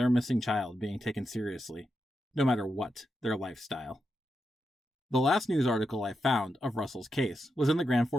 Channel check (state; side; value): normal; both; correlation 0.86